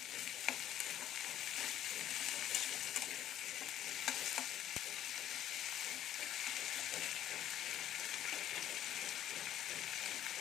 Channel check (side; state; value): right; quieter; 11.6 dB